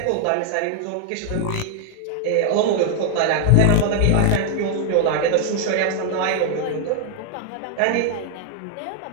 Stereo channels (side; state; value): both; different; correlation 0.00